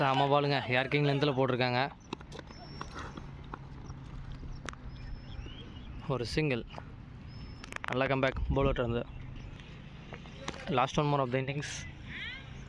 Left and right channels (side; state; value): both; identical; correlation 1.00